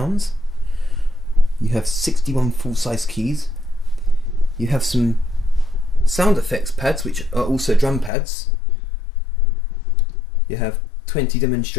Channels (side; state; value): right; drops out; at 8.1 s